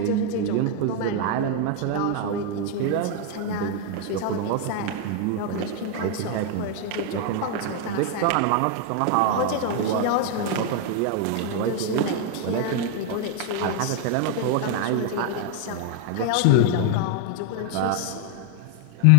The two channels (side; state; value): both; different; correlation 0.01